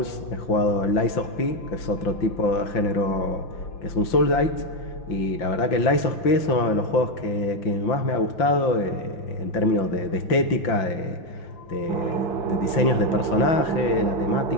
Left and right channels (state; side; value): late; right; 5.9 ms